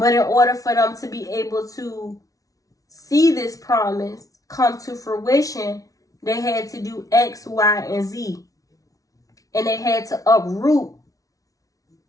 in order for them to be able to see this promise come to fruition, they had to do X, Y, and Z. And they had to uproot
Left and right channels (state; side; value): late; right; 0.17 ms